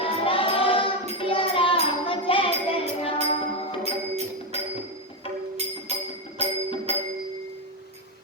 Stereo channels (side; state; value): both; normal; correlation 0.07